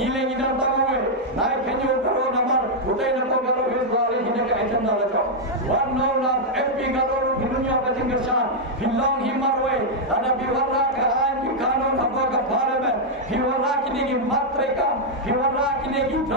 इधर तमवे नाय खेजो करो नंबर उठे नको करो इस बारे हिने का एजेंडा लगाओ वन नो ना एमपी करो हिनुया का जिगरसान हिलोंग हिमरवे अदा बिवरा का आइन की कानून हबो का पार्लियामेंट हिवरा किने की मात्रा हिवरा किने की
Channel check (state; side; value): normal; both; correlation -0.03